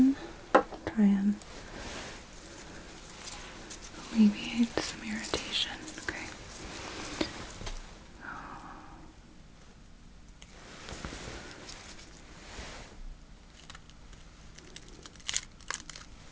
Try and alleviate some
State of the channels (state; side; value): identical; both; correlation 1.00